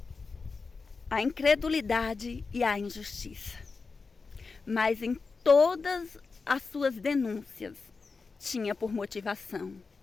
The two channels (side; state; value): right; quieter; 4.5 dB